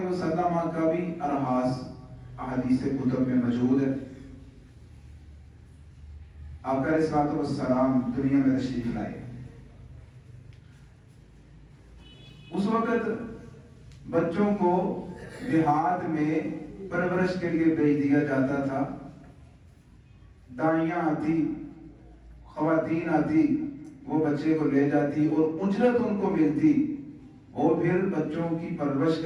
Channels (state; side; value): identical; both; correlation 1.00